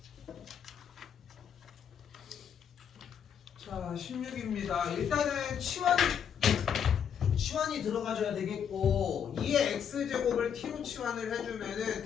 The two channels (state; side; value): quieter; right; 8.1 dB